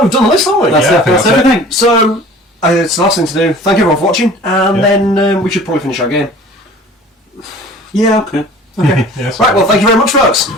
we've done the list, haven't we? That's everything. So it's the last thing to do. Thank everyone for watching, and then we should probably finish our game. Yeah, okay. Okay. Yes. Right, well, thank you very much, folks.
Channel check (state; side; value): normal; both; correlation 0.45